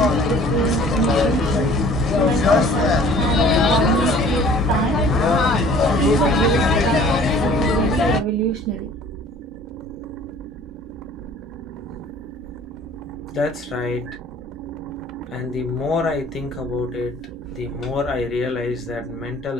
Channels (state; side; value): normal; both; correlation 0.51